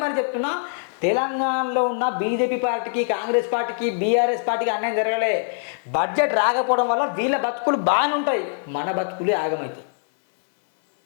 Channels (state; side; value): silent; right; 64 dB below the other